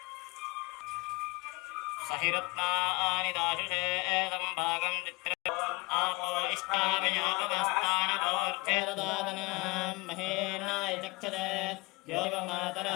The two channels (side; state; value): right; quieter; 24.7 dB